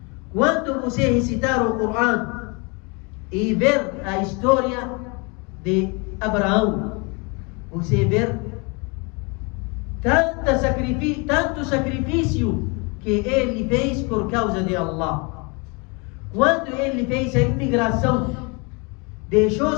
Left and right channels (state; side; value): quieter; right; 30.6 dB